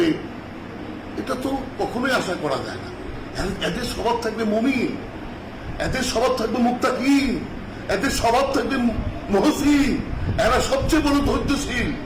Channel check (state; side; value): identical; both; correlation 1.00